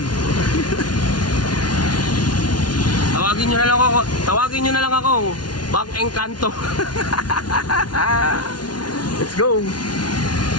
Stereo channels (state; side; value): late; right; 0.70 ms